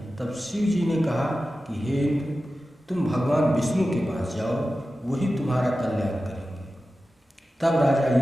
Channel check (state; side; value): normal; both; correlation 0.94